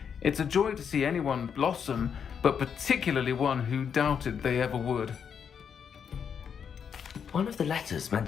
it's a joy to see anyone blossom, but particularly one who doubted they ever would. One of the letters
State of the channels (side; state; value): right; quieter; 7.3 dB